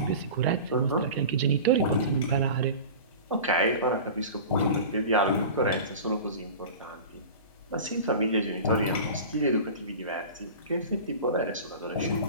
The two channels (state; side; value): inverted; both; correlation -0.34